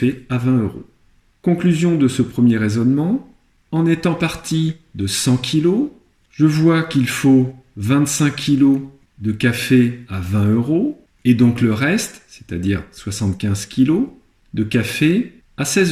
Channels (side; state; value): both; identical; correlation 1.00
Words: à 20 €. Conclusion de ce premier raisonnement, en étant parti de 100 kg, je vois qu'il faut 25 kg de café à 20 € et donc le reste, c'est-à-dire 75 kg de café à